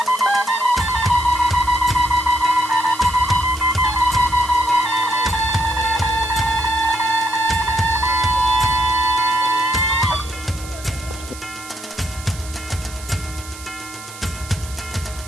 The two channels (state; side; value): noise; right; hiss, 15 dB below the sound